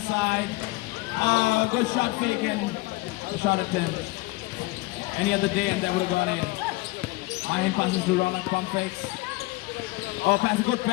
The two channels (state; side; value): quieter; right; 21.9 dB